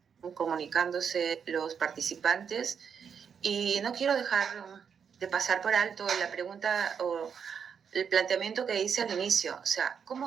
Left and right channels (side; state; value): left; quieter; 7.0 dB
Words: comunicándose los participantes y no quiero dejar de pasar por alto la pregunta o el planteamiento que hice al inicio. O sea,